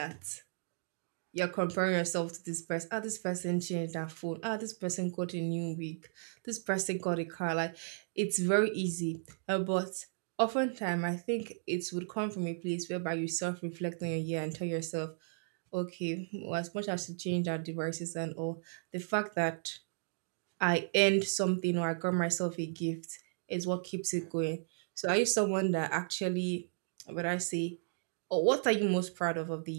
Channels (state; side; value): silent; left; digital silence